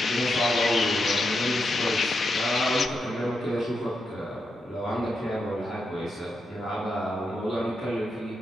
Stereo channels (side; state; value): both; normal; correlation 0.85